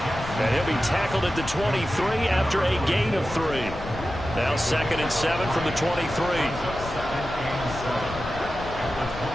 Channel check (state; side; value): noise; left; rumble, 11 dB below the sound